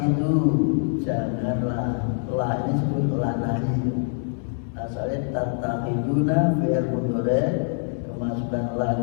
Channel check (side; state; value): right; silent; digital silence